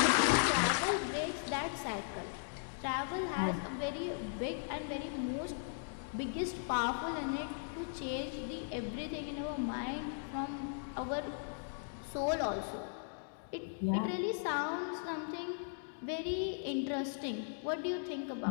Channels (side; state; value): right; silent; digital silence